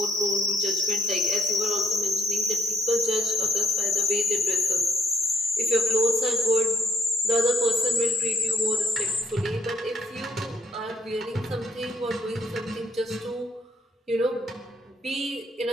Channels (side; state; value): both; normal; correlation 0.69